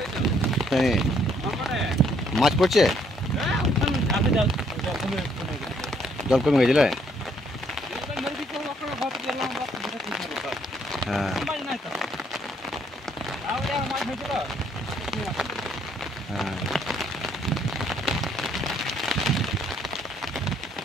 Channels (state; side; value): normal; both; correlation 0.68